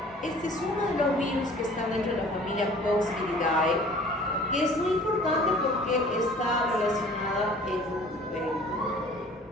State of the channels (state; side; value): normal; both; correlation 0.49